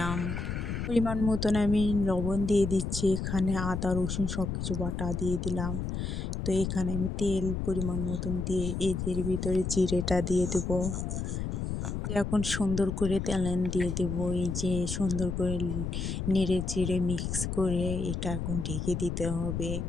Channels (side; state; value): left; noise; rumble, 3 dB below the sound